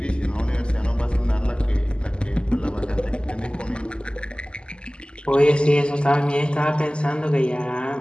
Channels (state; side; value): late; right; 0.050 ms